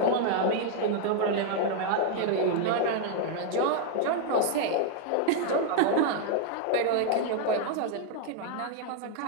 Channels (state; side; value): different; both; correlation 0.00